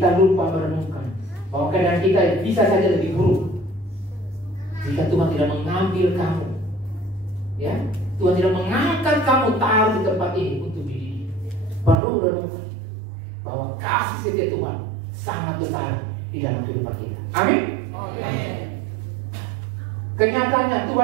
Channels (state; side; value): drops out; left; at 12.0 s